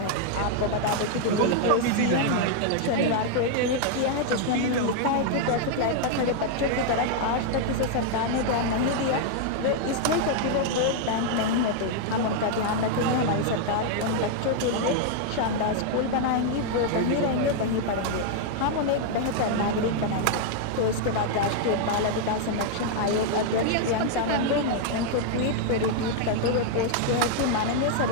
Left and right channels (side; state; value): both; different; correlation 0.00